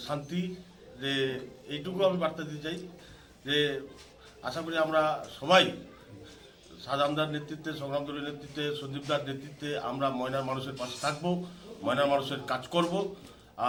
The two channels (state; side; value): identical; both; correlation 1.00